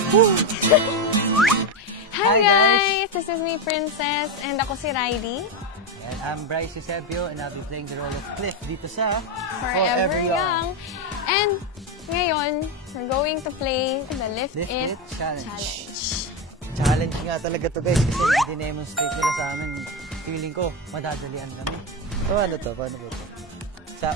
Hi guys! This is me, Princess, and ako si Riley. And I'm Bryce Eusebio, and I'll be playing the role of Cliff dito sa Forever Young. And ngayon, we're going to play the Lift It Challenge. Challenge nga talaga to guys, kasi i-demonstrate nila sa amin. Feeling ko, madadalian kami. So ano to? Paano ba ito? Sa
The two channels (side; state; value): both; normal; correlation 0.11